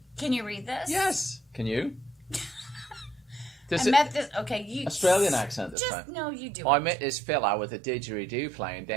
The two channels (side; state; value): left; drops out; at 5.8 s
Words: Can you read this? yes. Can you? I This is met this. Okay, you. Australian accent this Just time. no, you do. I it. met this fella with a didgeridoo playing